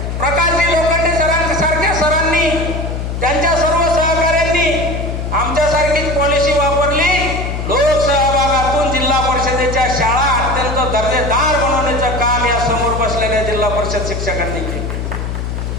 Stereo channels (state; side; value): noise; left; hum, 4 dB below the sound